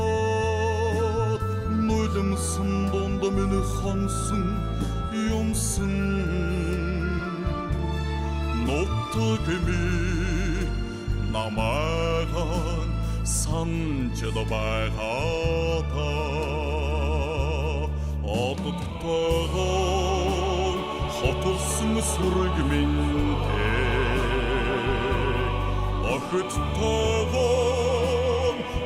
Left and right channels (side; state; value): both; identical; correlation 1.00